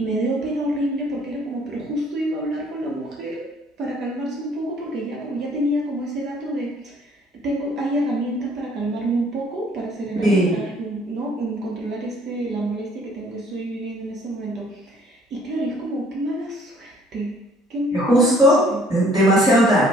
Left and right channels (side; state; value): both; normal; correlation 0.59